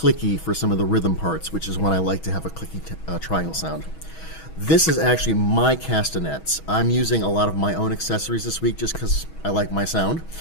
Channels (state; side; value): late; right; 6.2 ms